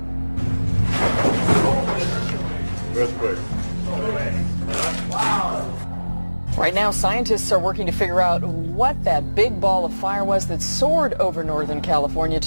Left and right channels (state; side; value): inverted; both; correlation -1.00